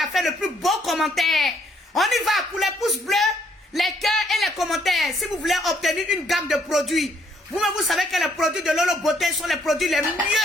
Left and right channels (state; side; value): normal; both; correlation 0.68